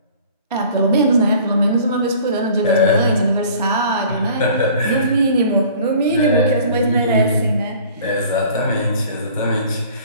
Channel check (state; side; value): inverted; both; correlation -0.49